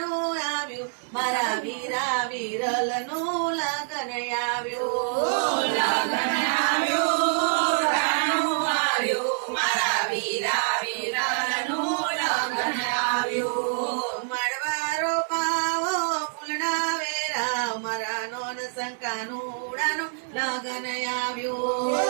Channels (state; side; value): silent; left; 61 dB below the other